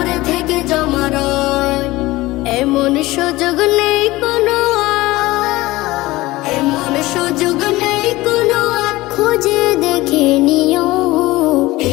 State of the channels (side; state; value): right; quieter; 19.1 dB